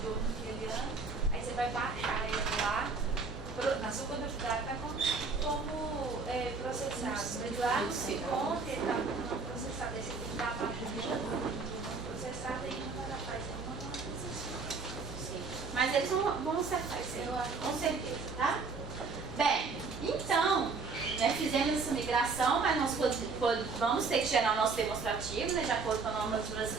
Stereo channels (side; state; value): left; quieter; 4.4 dB